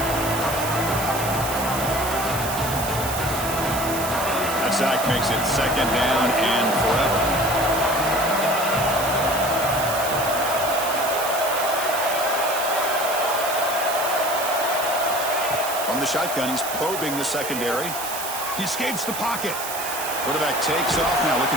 That sack makes it second down and forever. From the shotgun, he's probing the secondary. He escapes the pocket. Quarterback takes off now, looking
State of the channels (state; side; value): noise; right; hiss, 6 dB below the sound